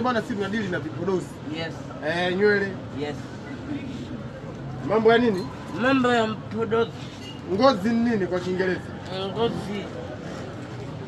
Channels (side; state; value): both; identical; correlation 1.00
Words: bwana sisi tunadili na vipodozi. Yes. Nywele. Yes. Mambo ya nini? Mambo ya vipodozi. Ngozi ni nini kwa Kiingereza? Ngozi.